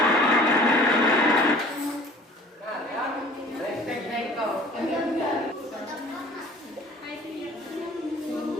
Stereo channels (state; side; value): normal; both; correlation 0.48